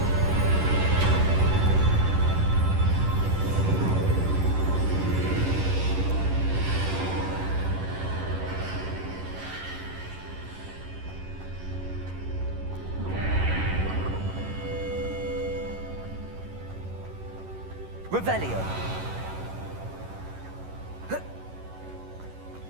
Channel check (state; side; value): late; left; 11 ms